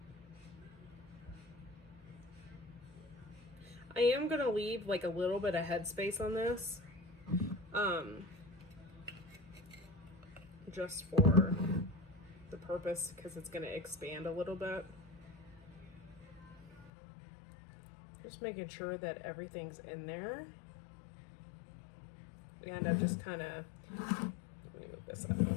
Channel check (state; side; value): drops out; right; at 16.9 s